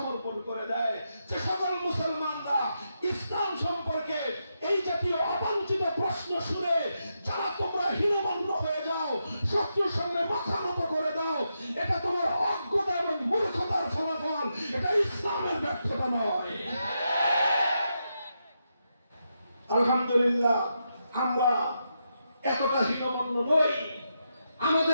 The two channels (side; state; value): both; inverted; correlation -0.84